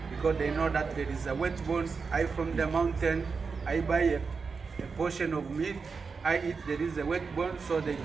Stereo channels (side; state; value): left; quieter; 5.0 dB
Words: because they know that there is a wet bone. I from the mountain, I buy a portion of meat, I eat, there is a wet bone, so they